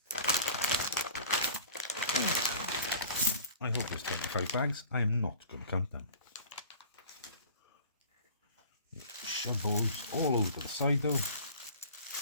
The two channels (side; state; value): both; inverted; correlation -0.44